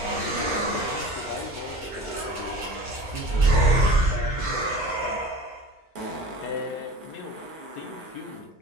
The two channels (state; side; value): normal; both; correlation 0.38